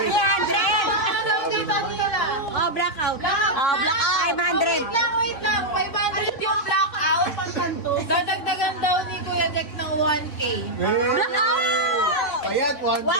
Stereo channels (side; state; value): right; late; 3.6 ms